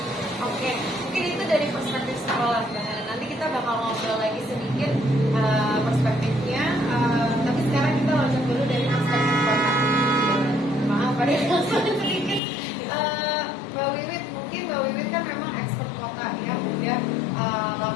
Oke, mungkin itu dari perspektif sekolah. Nanti kita bakal ngobrol lagi sedikit perspektifnya, tapi sekarang kita loncat dulu dari perspektif kota. Maaf ada yang sedikit. Mbak Wiwit, mungkin Mbak Wiwit kan memang expert kota yang udah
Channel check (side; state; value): right; drops out; at 12.4 s